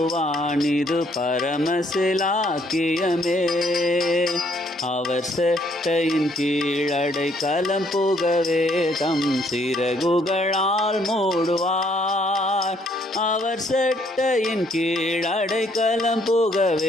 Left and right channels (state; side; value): normal; both; correlation 0.67